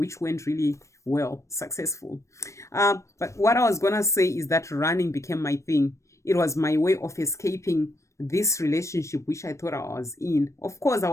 went really well, successful. But what I was gonna say is that running became my thing. It was my way of escaping this relationship which I thought I was in. Of course, I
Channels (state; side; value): late; right; 0.15 ms